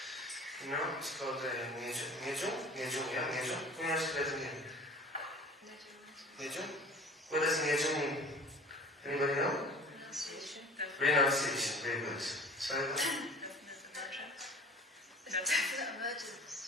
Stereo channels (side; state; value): both; normal; correlation 0.43